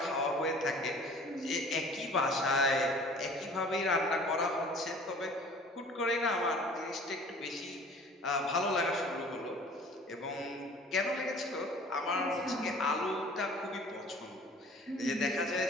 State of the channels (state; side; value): normal; both; correlation 0.48